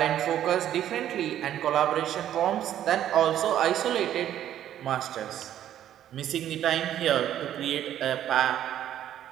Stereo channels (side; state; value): left; quieter; 11.3 dB